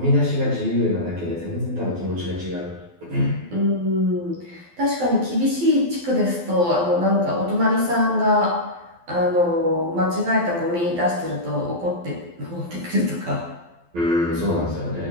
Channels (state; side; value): late; left; 12 ms